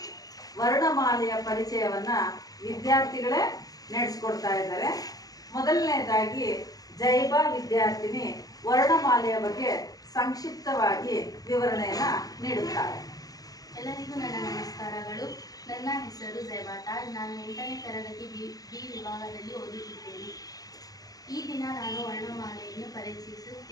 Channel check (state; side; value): late; right; 0.18 ms